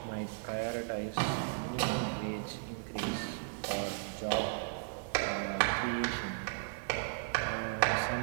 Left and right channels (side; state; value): left; silent; digital silence